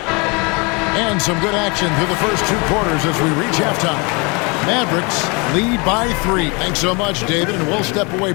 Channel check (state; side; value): quieter; right; 29.8 dB